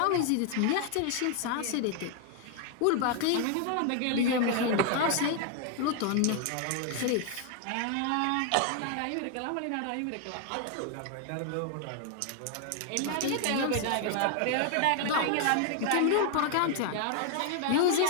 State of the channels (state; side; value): different; both; correlation 0.00